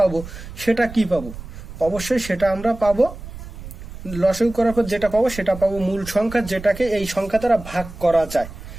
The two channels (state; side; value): noise; right; rumble, 13 dB below the sound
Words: সেটা কি পাবো? অবশ্যই সেটা আমরা পাবো, লসাগু করার পর যেটা পাবো সেটা পাবো মূল সংখ্যা, যেটাকে এই সংখ্যা দ্বারা ভাগ করা যায়।